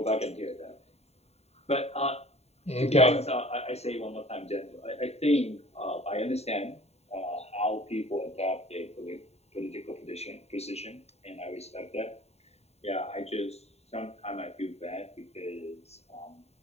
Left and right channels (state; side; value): late; right; 0.30 ms